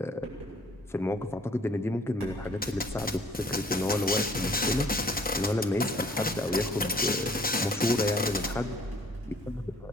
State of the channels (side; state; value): both; normal; correlation 0.57